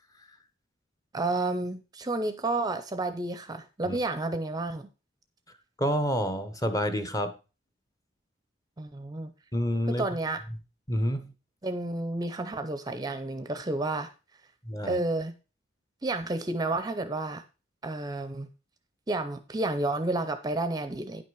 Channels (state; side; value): normal; both; correlation 0.56